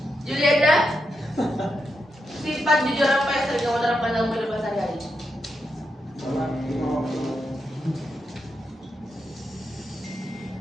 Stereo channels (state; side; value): normal; both; correlation 0.84